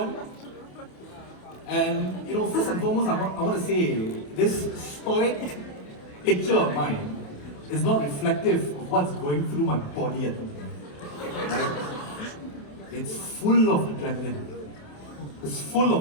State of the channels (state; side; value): late; right; 27 ms